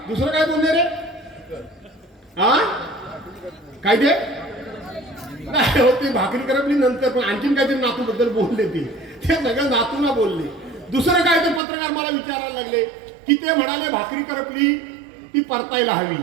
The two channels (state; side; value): drops out; left; at 11.6 s